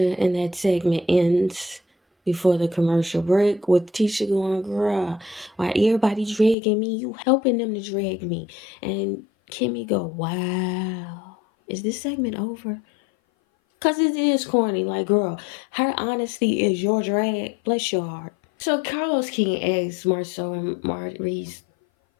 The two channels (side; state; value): right; drops out; at 6.6 s